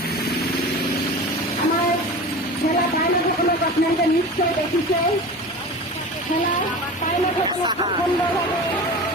আমাৰ ঠেলা পাইলটসকলক আপোনালোকে নিশ্চয় দেখিছে। ঠেলা পাইলটসকলক সুন্দৰভাৱে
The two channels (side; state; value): both; normal; correlation 0.33